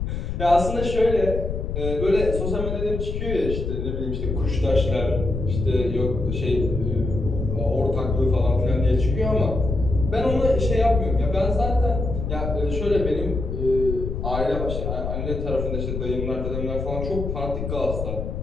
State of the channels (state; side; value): noise; left; rumble, 3 dB below the sound